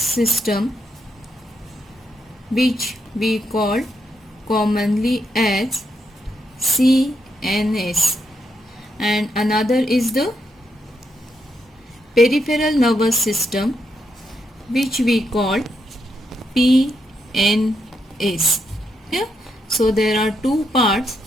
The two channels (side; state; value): both; normal; correlation 0.80